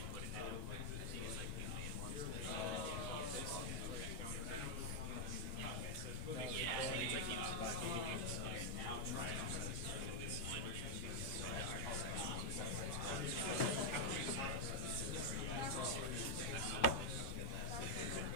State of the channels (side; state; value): right; late; 7.4 ms